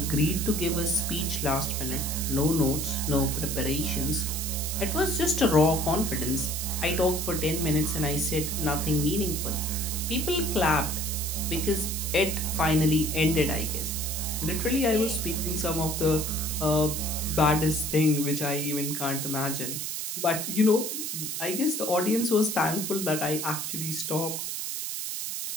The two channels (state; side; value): noise; right; hiss, 4 dB below the sound